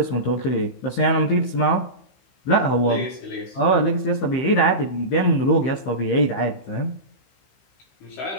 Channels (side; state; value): right; late; 15 ms